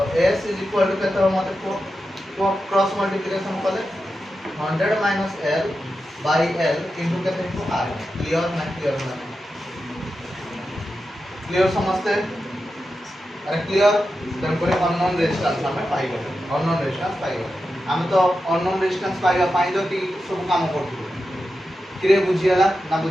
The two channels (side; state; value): both; normal; correlation 0.90